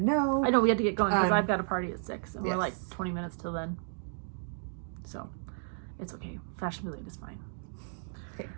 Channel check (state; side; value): silent; left; digital silence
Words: no. I know we had to get going because I've got a party at 6 and yes. we're like 20 minutes till then. So it's okay. Fashionably late is fine. Okay.